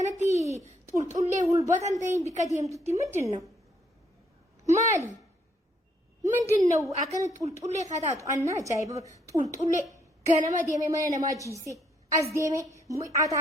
طول ليه والبطن تين بكديم تتي مدنو مالي مدنو أكنت طول ليه خدات أنا جايب طول ليه كنا ما ديمه ما ما جيسي أز ديمه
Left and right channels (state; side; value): normal; both; correlation 0.70